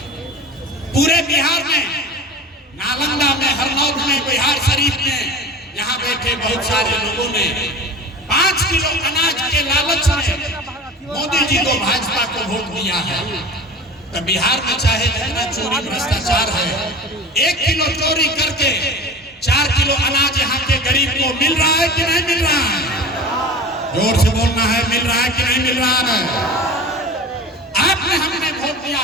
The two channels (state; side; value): normal; both; correlation 0.35